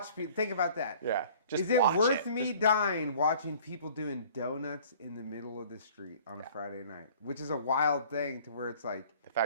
people? Think about that. Yeah. Just Is it watch worth it. me dying watching people doing donuts in the middle of the street on a Friday night? Which is a wild thing to where it's like, The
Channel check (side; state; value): both; inverted; correlation -0.51